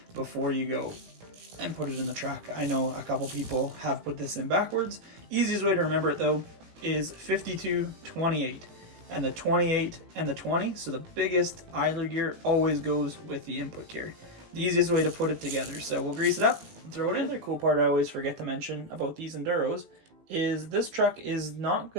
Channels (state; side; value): late; left; 18 ms